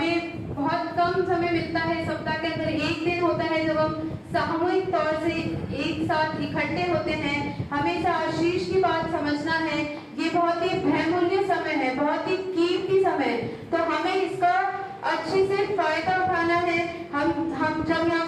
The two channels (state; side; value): identical; both; correlation 1.00